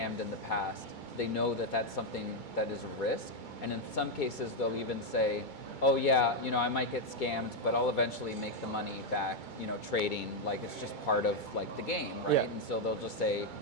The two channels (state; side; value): late; right; 2.3 ms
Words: in the past. They know that that's something that is a risk. And in some cases, they'll even say, oh yeah, I might get scammed, but I'll eventually make the money back, trading, like it's just part of like the game, right? Yeah. And so they'll just say,